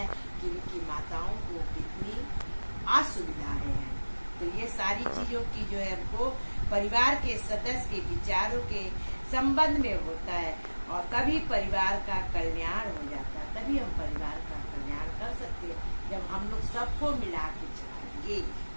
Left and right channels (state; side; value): inverted; both; correlation -1.00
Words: कि उनकी माताओं को कितनी असुविधाएं हैं। तो ये सारी चीजों की जो है हमको परिवार के सदस्य के विचारों के संबंध में होता है और तभी परिवार का कल्याण हो जाता है। तभी हम परिवार का कल्याण कर सकते हैं जब हम लोग सबको मिला के चलाएंगे।